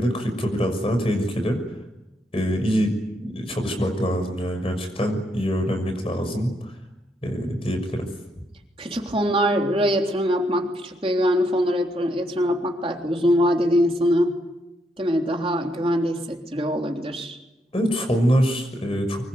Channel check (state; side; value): normal; both; correlation 0.78